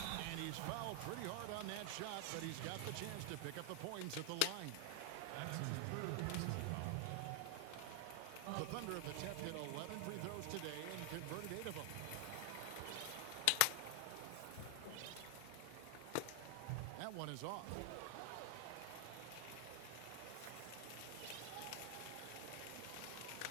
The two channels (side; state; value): both; different; correlation 0.00